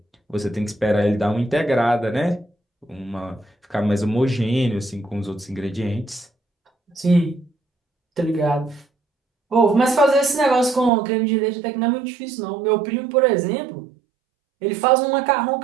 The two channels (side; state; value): left; drops out; at 10.9 s